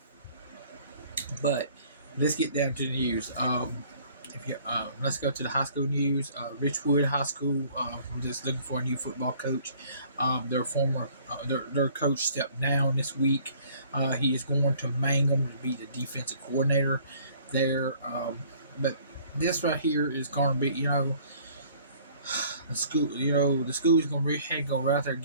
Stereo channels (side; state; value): both; inverted; correlation -0.56